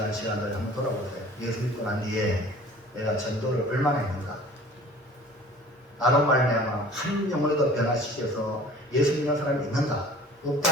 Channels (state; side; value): normal; both; correlation 0.47